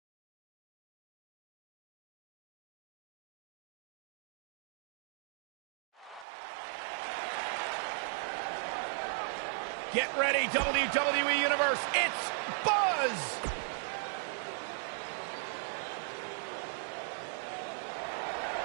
Get ready, WWE Universe. It's Buzz!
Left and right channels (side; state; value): left; drops out; at 6.2 s